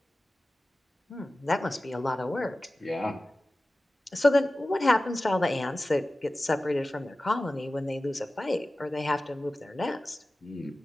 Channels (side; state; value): both; normal; correlation 0.96